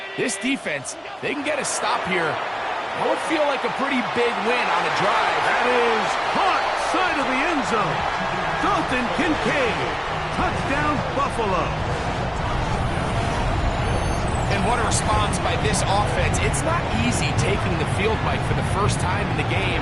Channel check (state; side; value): identical; both; correlation 1.00